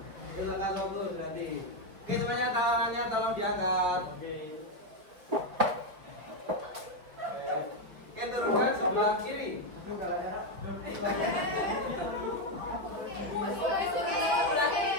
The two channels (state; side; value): late; left; 5.1 ms